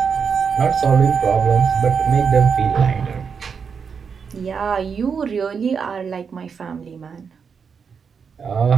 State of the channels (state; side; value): quieter; left; 6.2 dB